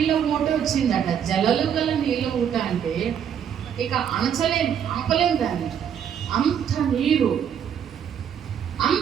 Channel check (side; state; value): left; quieter; 8.6 dB